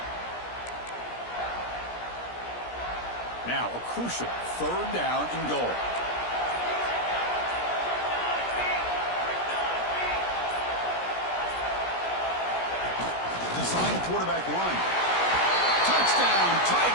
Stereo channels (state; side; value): late; right; 17 ms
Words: Now a crucial third down and goal. Design quarterback run. Touchdown,